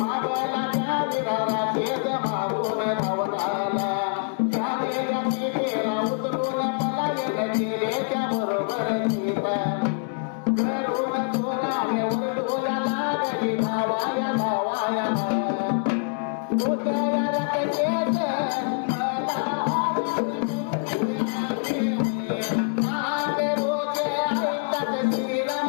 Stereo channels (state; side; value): silent; right; 62 dB below the other